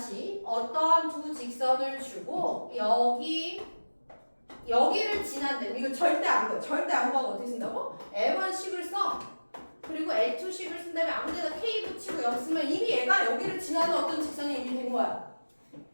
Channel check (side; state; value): both; inverted; correlation -1.00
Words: 어떤 두 직선을 주고 여기를 지난다면 이거 절대 안 보여. 절대 안 보고 어떻게 쓴다고? L1식을 써. 그리고 L2식을 쓴 다음에 아무데나 K 붙이고 여기 쓰면 이미 얘가 여기를 지나는 어떤 직선이 이미 된 거야.